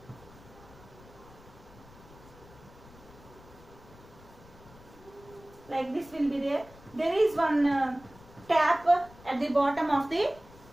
like this will be there. There is one tap at the bottom of the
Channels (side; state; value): left; noise; rumble, 22 dB below the sound